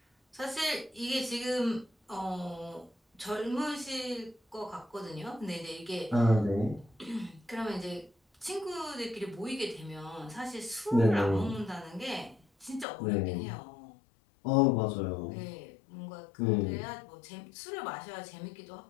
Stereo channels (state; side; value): drops out; right; at 12.9 s